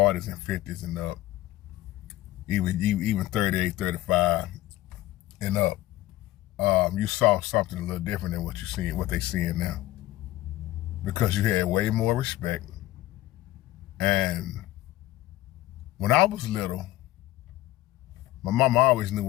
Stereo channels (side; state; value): right; quieter; 16.0 dB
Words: and 50s and up, even 38, 35 and up, you saw something a little different than what they seeing now. Because you had way more respect. And when I was little, my mama always knew